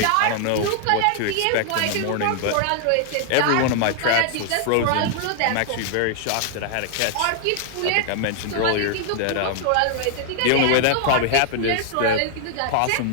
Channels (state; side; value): different; both; correlation 0.00